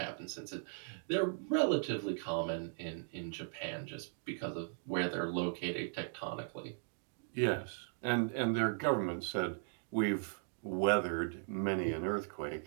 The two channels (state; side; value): silent; left; digital silence